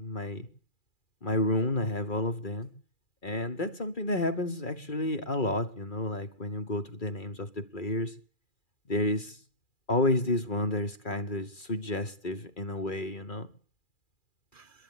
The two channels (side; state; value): right; late; 2.4 ms